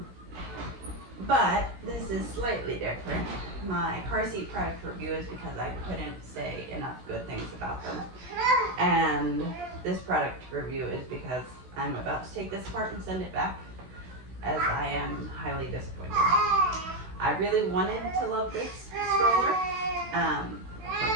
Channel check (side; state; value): left; late; 16 ms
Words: But this is slightly different. My car seat product review is because I couldn't say enough good things about them. And this product review is because I'm about to take this apart and send it back, as I am highly disappointed. I really wanted to love this stroller.